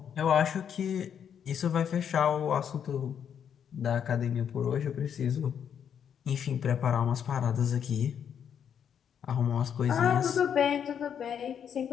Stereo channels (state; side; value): quieter; right; 8.2 dB